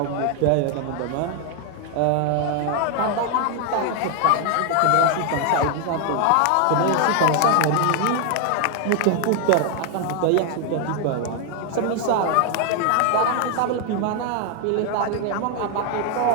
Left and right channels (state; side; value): different; both; correlation 0.01